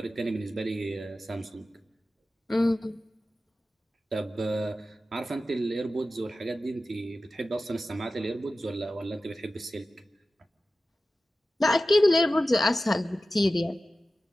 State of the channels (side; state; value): both; normal; correlation 0.94